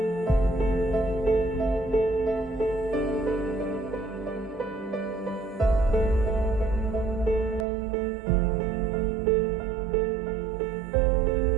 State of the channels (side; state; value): left; drops out; at 7.7 s